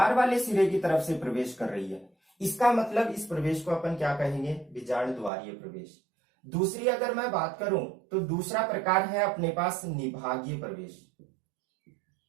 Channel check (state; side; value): drops out; left; at 5.3 s